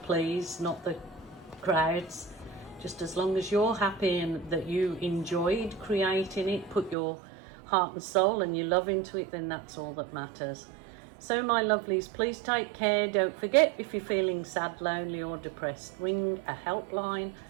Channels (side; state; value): left; drops out; at 7.0 s